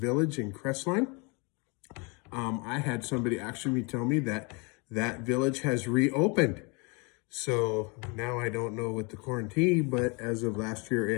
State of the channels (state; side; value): quieter; right; 30.8 dB